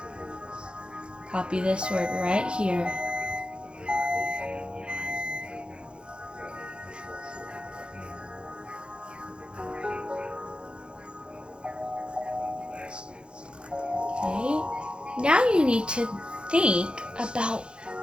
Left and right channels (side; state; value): left; late; 0.053 ms